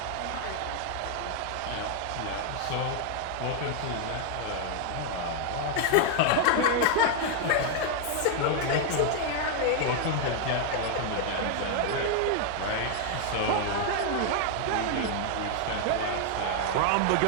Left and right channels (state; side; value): different; both; correlation 0.00